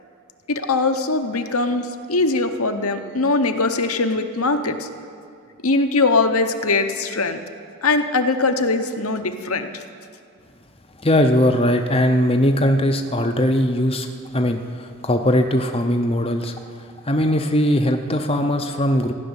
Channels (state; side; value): normal; both; correlation 0.34